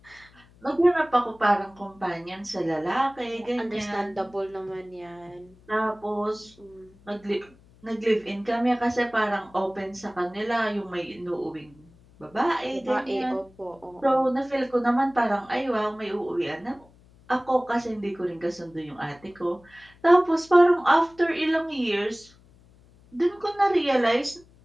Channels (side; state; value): left; noise; hum, 27 dB below the sound